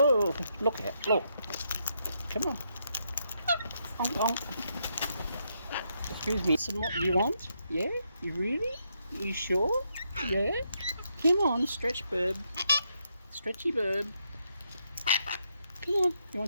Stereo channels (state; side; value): inverted; both; correlation -0.78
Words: look out, look. Come on. Onk, onk. Excuse me, some what you want? Yeah? You really? You sure? Yeah? Come on, stretch bird. Stretchy bird. Come on, you